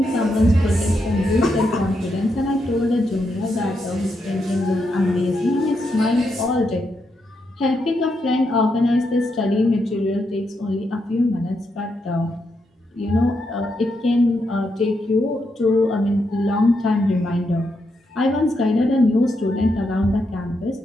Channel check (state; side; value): normal; both; correlation 0.82